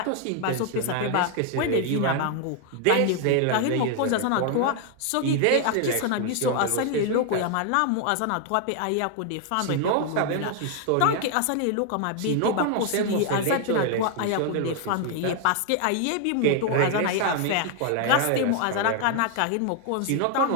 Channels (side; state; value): both; different; correlation 0.00